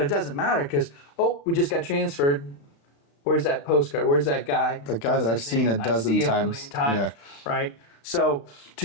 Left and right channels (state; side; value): late; right; 35 ms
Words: it doesn't matter because we just got transferred. Where's that postcard? Where's that guy? The guy that I've seen a dozen times. Yeah. Right? So